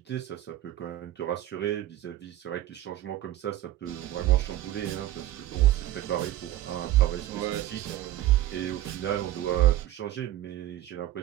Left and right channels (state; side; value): quieter; left; 14.0 dB